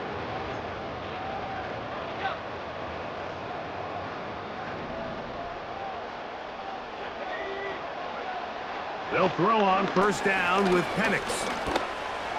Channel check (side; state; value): both; identical; correlation 1.00